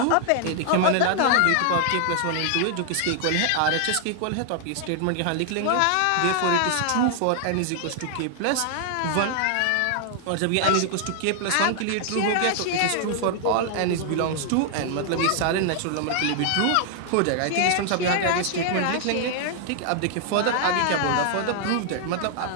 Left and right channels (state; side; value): different; both; correlation 0.00